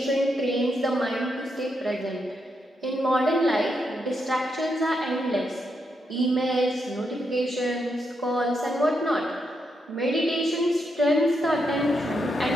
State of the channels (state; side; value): normal; both; correlation 0.81